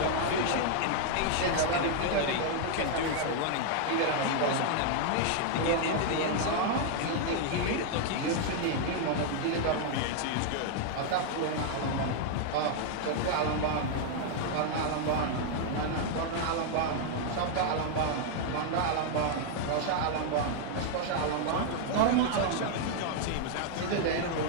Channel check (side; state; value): both; different; correlation 0.00